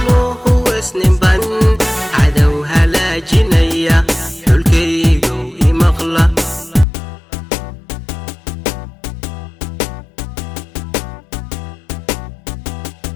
huwaysninban cadow halaajinaya xulkaygow imaqla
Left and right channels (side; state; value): right; drops out; at 6.9 s